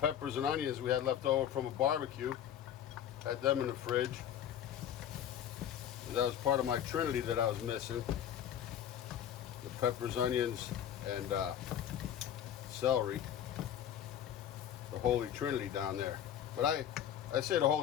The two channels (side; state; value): right; quieter; 10.1 dB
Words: and onions we had left over from a barbecue. Had them in the fridge. That was part of my trinity that I was missing. The peppers, onions, and celery. The Holy Trinity down there. But I say the